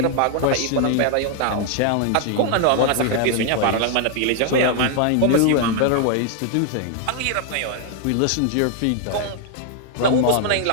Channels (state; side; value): different; both; correlation 0.00